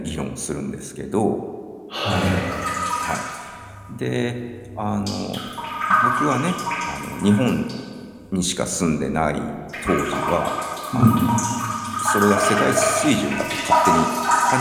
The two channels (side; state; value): both; identical; correlation 1.00